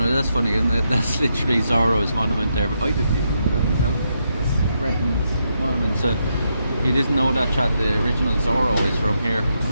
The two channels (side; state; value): both; inverted; correlation -0.81